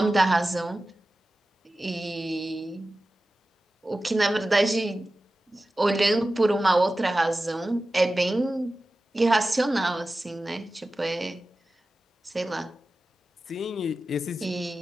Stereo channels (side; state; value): both; normal; correlation 0.95